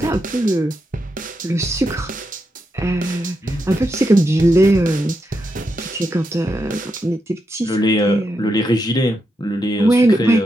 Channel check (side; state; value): both; normal; correlation 0.84